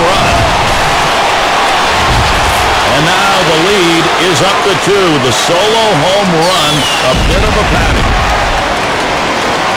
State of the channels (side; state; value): both; identical; correlation 1.00